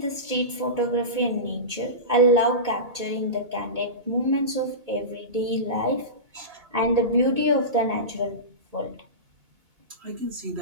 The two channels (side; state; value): left; late; 2.2 ms